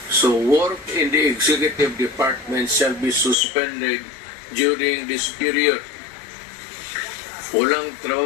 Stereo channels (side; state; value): right; drops out; at 3.4 s